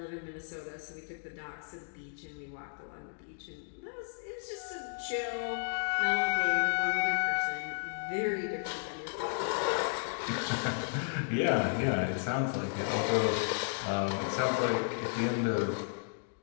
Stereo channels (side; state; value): right; silent; digital silence